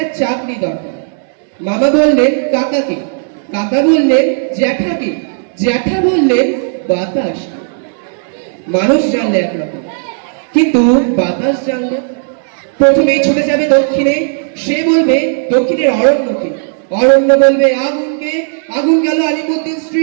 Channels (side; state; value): left; silent; 67 dB below the other